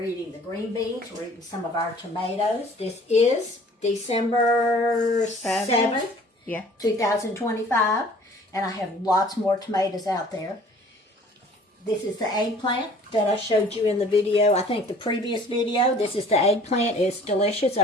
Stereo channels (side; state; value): both; normal; correlation 0.51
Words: eating the green beans. We're eating some of our tomatoes. This is December 7th, 2025. And I have lots more tomatoes out there. This is the eggplant that I showed you in the video. I think the previous video. This is the eggplant. It's delicious.